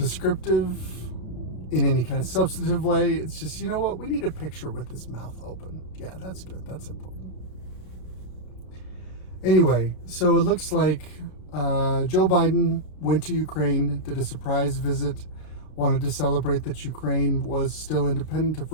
in any kind of substantive way. It's just, you know what? We need a picture with his mouth open. Yeah, that's good. That's important. Anyway, so it looks like Joe Biden went to Ukraine, did a surprise visit, wanted to celebrate that Ukraine was still independent of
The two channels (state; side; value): late; right; 33 ms